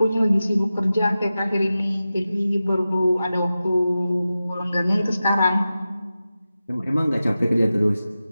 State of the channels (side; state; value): both; inverted; correlation -0.93